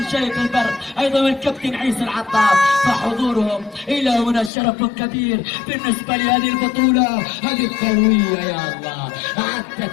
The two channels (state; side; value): drops out; right; at 4.5 s